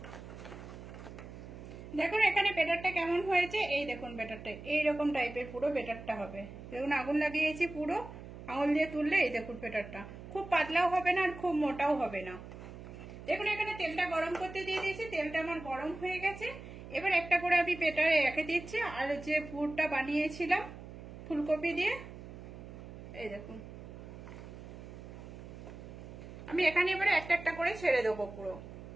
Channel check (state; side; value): noise; right; hum, 13 dB below the sound